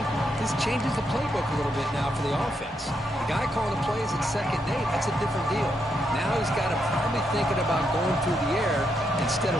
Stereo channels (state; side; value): normal; both; correlation 0.80